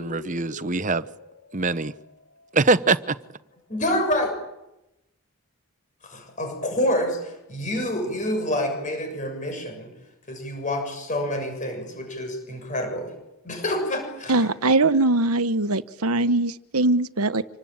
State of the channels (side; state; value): both; normal; correlation 0.01